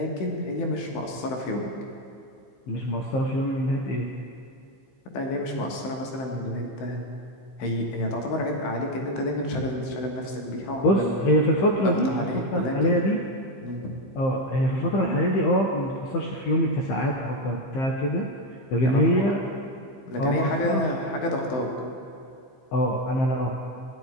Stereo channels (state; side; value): late; right; 15 ms